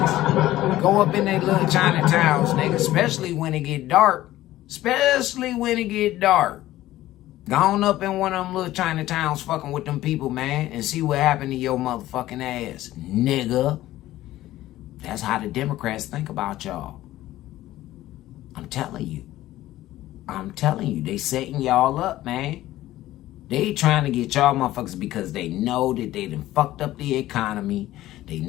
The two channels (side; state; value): right; quieter; 15.2 dB